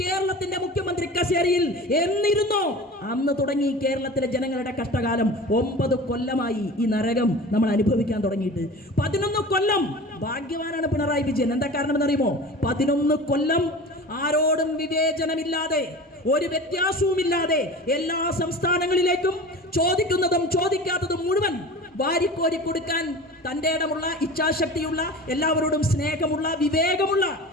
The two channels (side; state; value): both; normal; correlation 0.36